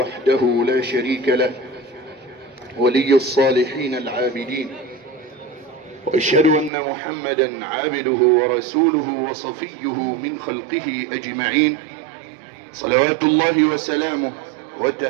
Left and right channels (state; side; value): drops out; left; at 6.7 s